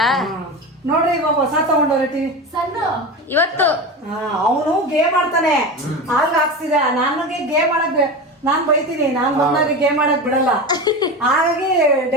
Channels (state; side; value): normal; both; correlation 0.25